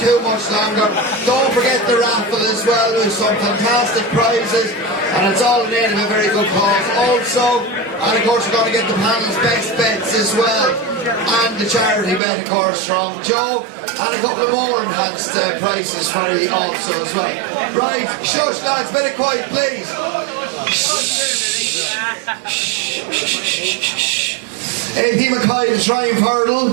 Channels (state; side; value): drops out; left; at 12.2 s